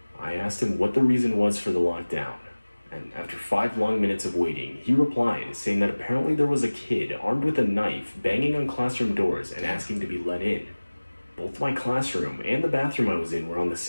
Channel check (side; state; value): both; inverted; correlation -1.00